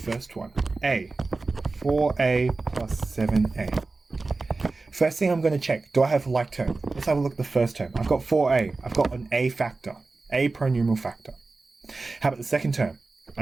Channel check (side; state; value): left; quieter; 3.6 dB